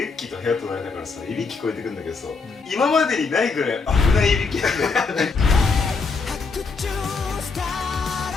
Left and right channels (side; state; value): right; quieter; 4.6 dB